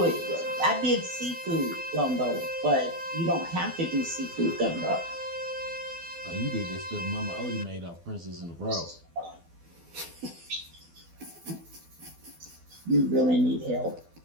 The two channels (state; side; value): late; left; 12 ms